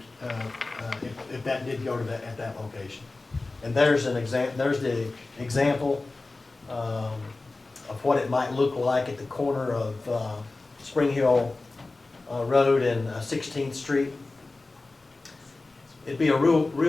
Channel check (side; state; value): right; quieter; 3.3 dB